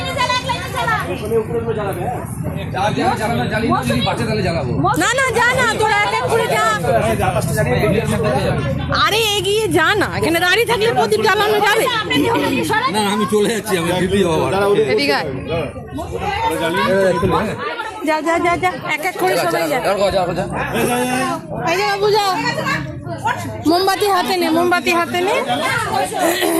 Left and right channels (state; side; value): identical; both; correlation 1.00